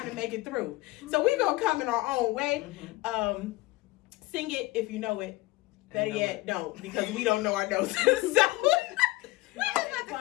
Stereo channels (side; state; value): right; quieter; 20.3 dB